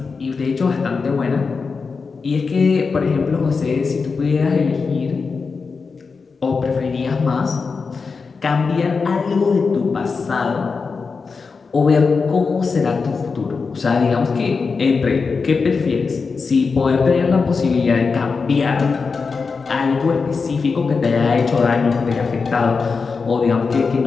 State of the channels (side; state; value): right; quieter; 4.8 dB